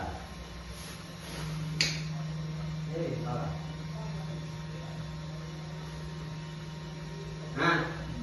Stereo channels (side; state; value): both; identical; correlation 1.00